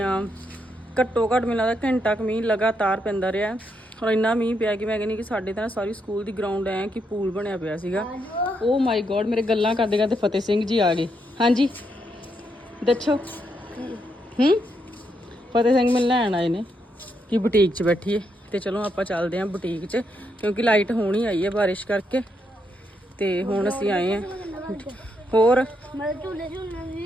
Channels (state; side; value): normal; both; correlation 0.79